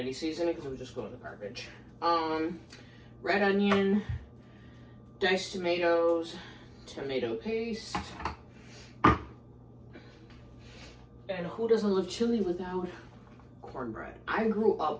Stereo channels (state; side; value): identical; both; correlation 1.00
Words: seasoning because it would just go in the garbage. Red onion, diced tomatoes, tomato paste. And who doesn't love chili without cornbread? I grew